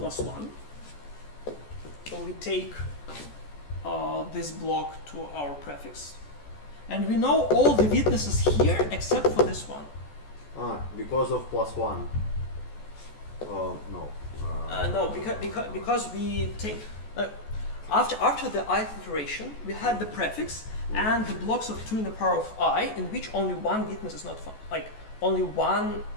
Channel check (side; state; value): right; late; 14 ms